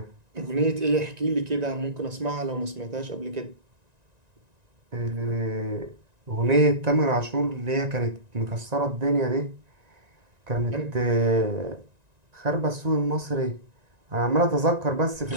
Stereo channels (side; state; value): left; late; 1.9 ms